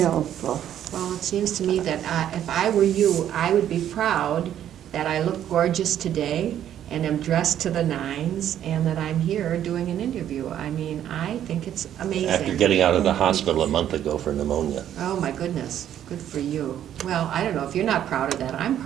Well, it seems to me that if I were you, I would be proud that I look gorgeous today and am dressed to the nines and that I'm here doing an interview. I mean, I think it's amazing. After getting out of the hospital a month ago for pneumonia. Oh, my goodness. Good for you. Well, I don't know. If you're not proud of that, I'm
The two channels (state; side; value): quieter; left; 10.7 dB